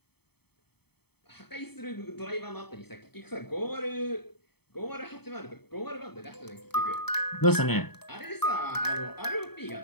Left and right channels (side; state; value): right; late; 0.97 ms